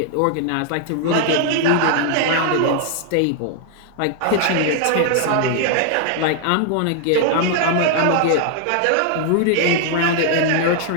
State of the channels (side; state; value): both; different; correlation 0.00